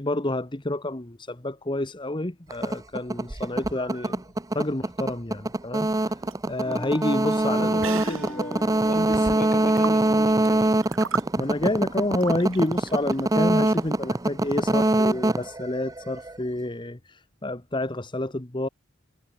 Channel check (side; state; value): both; normal; correlation 0.74